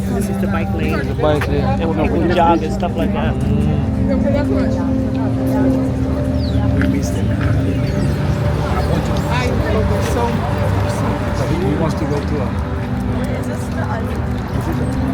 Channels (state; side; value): identical; both; correlation 1.00